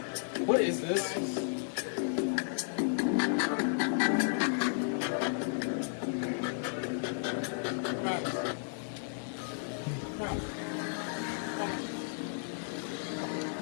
What is this?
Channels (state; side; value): silent; right; 55 dB below the other